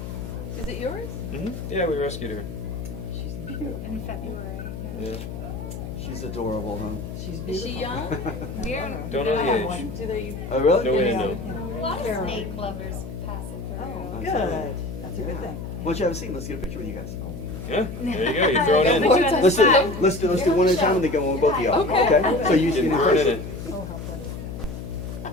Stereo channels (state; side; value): noise; left; hum, 8 dB below the sound